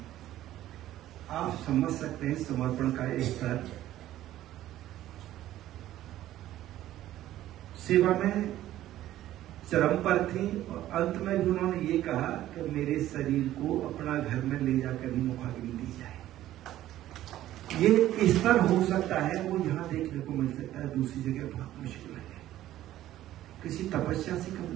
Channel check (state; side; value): quieter; left; 13.7 dB